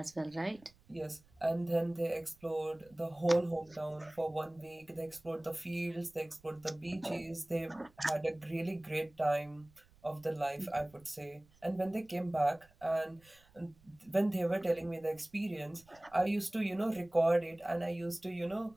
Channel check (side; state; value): right; noise; rumble, 29 dB below the sound